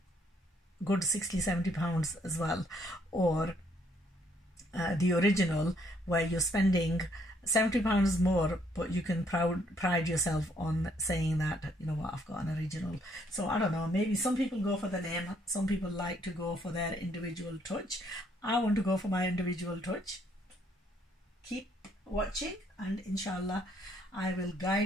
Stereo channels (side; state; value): both; normal; correlation 0.68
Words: good 60-70 pounds as well, or the original where you're spending £70 more, but you can pride yourself on saying that, you know what, I've got an original. So I don't know, maybe some people go for the name, some people like to go for their individual touch. I want to go for my individual touch. Keep watching, and inshallah I will